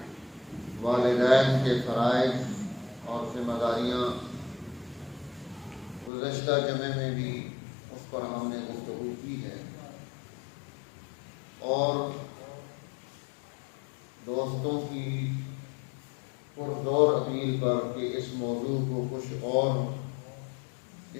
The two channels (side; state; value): right; drops out; at 6.1 s